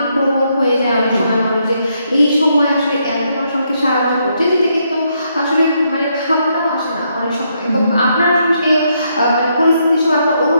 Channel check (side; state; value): both; inverted; correlation -0.76